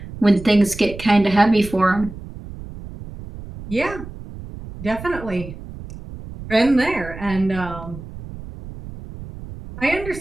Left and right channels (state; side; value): noise; right; rumble, 13 dB below the sound